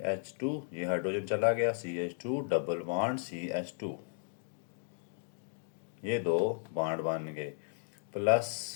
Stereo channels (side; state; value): right; silent; digital silence